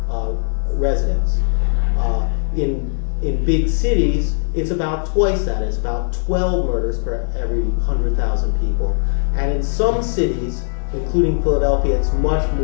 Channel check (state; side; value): silent; right; digital silence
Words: residents. In big cities, it's about twice that. It's about 12 murders per every 100,000 people. And in some cities, including Philadelphia, it's much